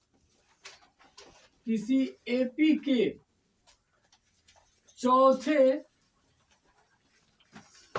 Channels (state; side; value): identical; both; correlation 1.00